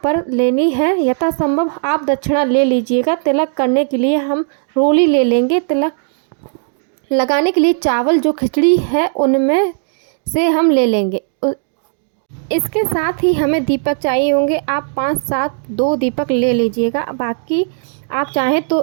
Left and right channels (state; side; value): silent; left; digital silence